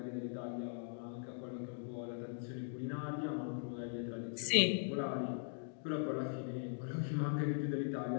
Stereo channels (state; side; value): silent; right; digital silence